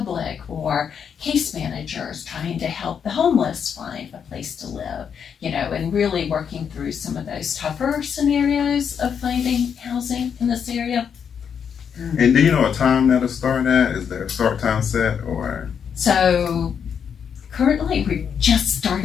or case managers trying to help the homeless find a place to live, and really working through some of those tougher scenarios of finding housing in this area. And do you know a time that'll start at? Is there a start time set or? So currently we're just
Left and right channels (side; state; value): right; quieter; 7.4 dB